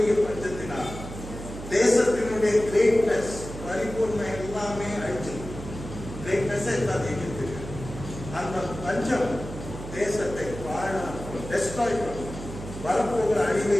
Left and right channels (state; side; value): noise; right; hum, 10 dB below the sound